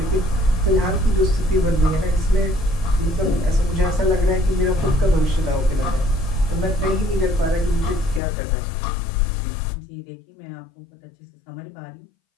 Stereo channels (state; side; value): drops out; right; at 8.2 s